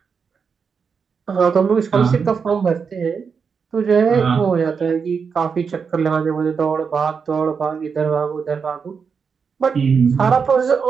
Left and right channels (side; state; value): left; quieter; 5.9 dB